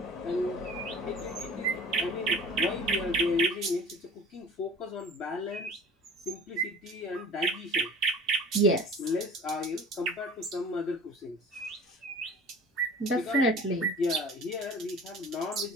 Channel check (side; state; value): both; normal; correlation 0.43